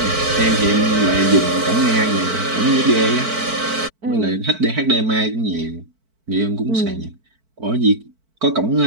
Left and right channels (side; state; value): left; late; 4.5 ms